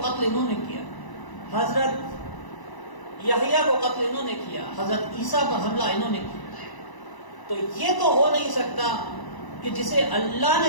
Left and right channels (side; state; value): right; late; 1.0 ms